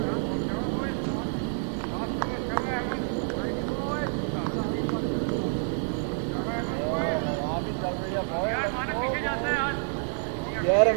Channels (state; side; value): silent; left; 59 dB below the other